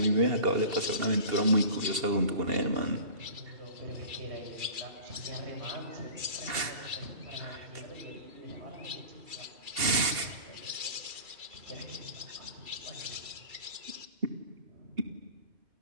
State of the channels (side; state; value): left; late; 2.7 ms